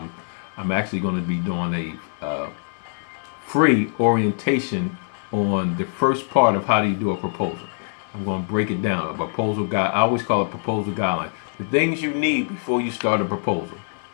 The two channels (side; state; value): right; silent; digital silence